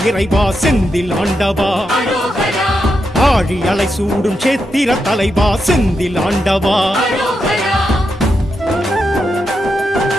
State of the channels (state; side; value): normal; both; correlation 0.85